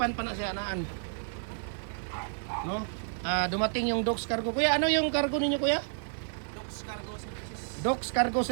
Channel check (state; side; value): silent; left; digital silence